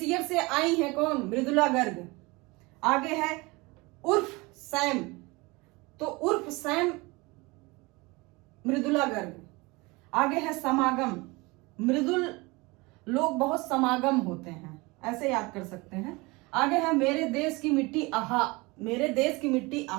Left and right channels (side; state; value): left; quieter; 24.6 dB